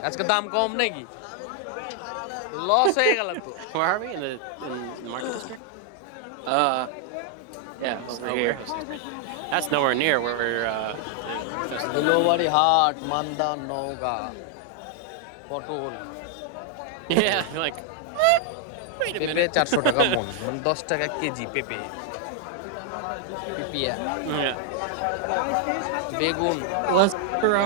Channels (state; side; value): different; both; correlation 0.00